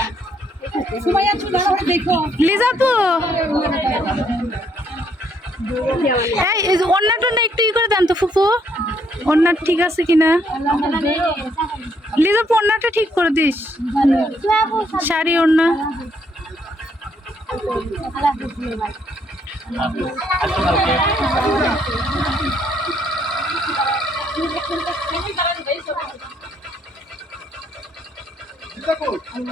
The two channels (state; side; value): normal; both; correlation 0.70